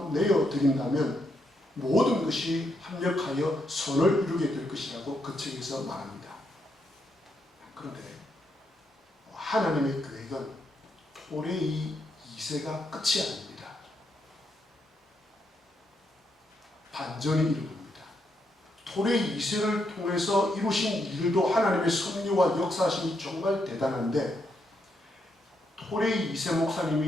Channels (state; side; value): normal; both; correlation 0.79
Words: 내어드린다면 모든 것이 합력하여 선을 이루게 될 것이라고 그 책에서 말합니다. 그런데 하나님의 계획은 토레이 2세가 끝이 아닙니다. 반전이 일어납니다. 토레이 2세를 통해서 이루신 일도 하나님의 섭리와 역사심이 정말 대단한데 토레이 2세